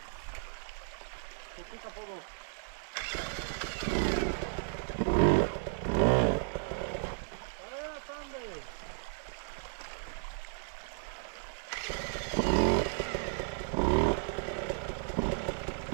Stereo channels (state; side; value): silent; left; digital silence